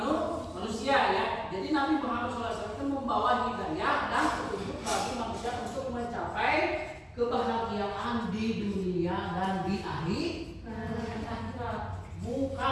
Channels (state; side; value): identical; both; correlation 1.00